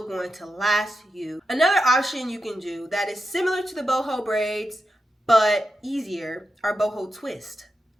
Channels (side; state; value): both; normal; correlation 0.88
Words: going to last you. Another option you can do that is similar to the boho braids, but easier, are boho twist.